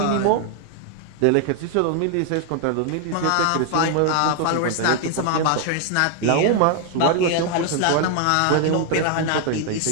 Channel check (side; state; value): both; different; correlation 0.00